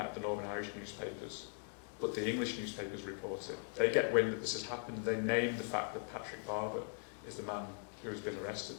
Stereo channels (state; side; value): silent; right; 51 dB below the other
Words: of the Northern Irish newspapers, but the English newspapers report it. They get wind that this has happened, they name the fact that Patrick Barber is the man who has been arrested.